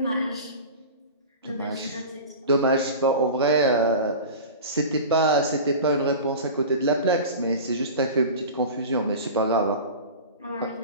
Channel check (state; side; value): inverted; both; correlation -0.33